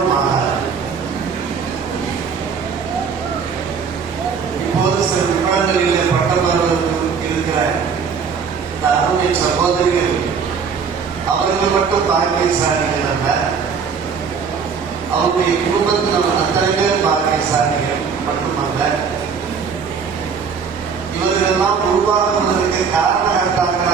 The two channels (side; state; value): left; quieter; 6.1 dB